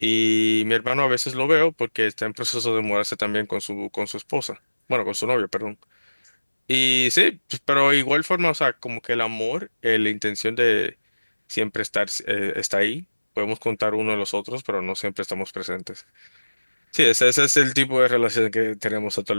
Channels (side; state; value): both; inverted; correlation -1.00